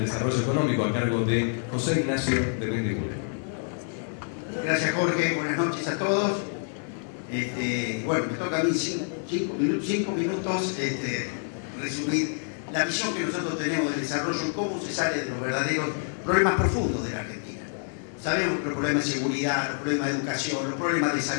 desarrollo económico a cargo de José Ignacio de Mendiguren. Gracias, Jorge. Buenas noches a todos. Bueno, me toca a mí 5 minutos resumir la visión que nosotros tenemos del desarrollo, cómo se sale de los verdaderos problemas profundos de la Argentina. Sabemos que los problemas de seguridad, los problemas de educación, los problemas de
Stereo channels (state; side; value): silent; right; 56 dB below the other